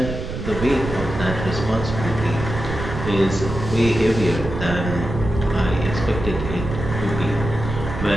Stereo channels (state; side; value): noise; right; rumble, 6 dB below the sound